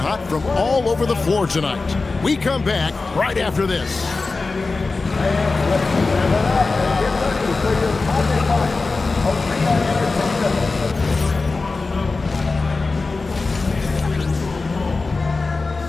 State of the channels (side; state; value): right; quieter; 3.8 dB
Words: from all over the floor tonight. We come back right after this.